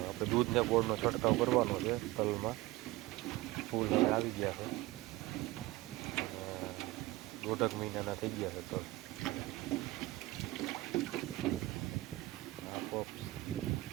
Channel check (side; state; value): left; quieter; 18.9 dB